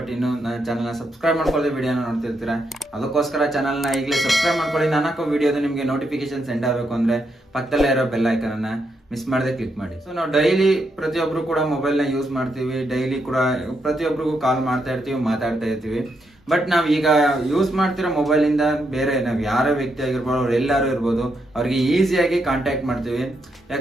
ಇನ್ನು ನನ್ನ ಚಾನಲ್ನ ಸಬ್ಸ್ಕ್ರೈಬ್ ಮಾಡ್ಕೊಳ್ಳಿ, ವಿಡಿಯೋನ ನೋಡ್ತಿರ್ತೀರಾ. ಅದಕ್ಕೋಸ್ಕರ ಚಾನಲ್ನ ಈಗಲೇ ಸಬ್ಸ್ಕ್ರೈಬ್ ಮಾಡ್ಕೊಳ್ಳಿ. ನಾನು ಹಾಕೋ ವಿಡಿಯೋದು ನಿಮಗೆ ನೋಟಿಫಿಕೇಶನ್ ಸೆಂಡ್ ಆಗಬೇಕು ಅಂದ್ರೆ ಪಕ್ಕದಲ್ಲೇ ಇರೋ ಬೆಲ್ ಐಕನ್ ಅನ್ನ ಮಿಸ್ ಮಾಡದೆ ಕ್ಲಿಕ್ ಮಾಡಿ. ಸೊ ನಾವು ಡೈಲಿ ಪ್ರತಿಯೊಬ್ರು ಕೂಡ ಮೊಬೈಲ್ ನ ಯೂಸ್ ಮಾಡ್ತೀವಿ, ಡೈಲಿ ಕೂಡ ಪ್ರತಿಯೊಬ್ಬರಿಗೂ ಕಾಲ್ ಮಾಡ್ತಾ ಇರ್ತೀವಿ, ಮಾತಾಡ್ತಾ ಇರ್ತೀವಿ. ಬಟ್ ನಾವ್ ಈಗ ಯೂಸ್ ಮಾಡ್ತಿರೋ ಮೊಬೈಲ್ ಇಂದ ಬೇರೆ ನಾವ್ ಯಾರೋ ವ್ಯಕ್ತಿ ಆಗಿರ್ಬೋದು, ಅವ್ರು ಎಲ್ಲಾರು ಇರ್ಬೋದು, ಅವ್ರಿಗೆ ಈಸಿಯಾಗಿ ಕಾಂಟ್ಯಾಕ್ಟ್ ಮಾಡ್ತೀವಿ.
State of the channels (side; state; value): both; normal; correlation 0.80